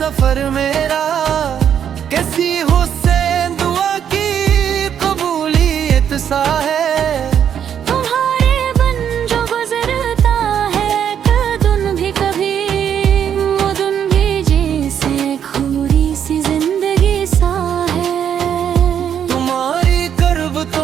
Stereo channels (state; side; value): quieter; left; 8.8 dB